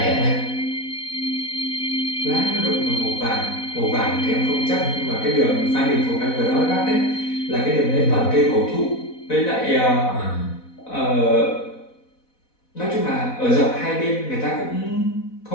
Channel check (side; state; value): right; late; 4.1 ms